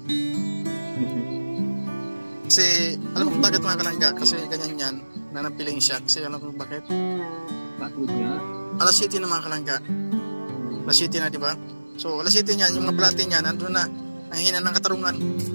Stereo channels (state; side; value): inverted; both; correlation -1.00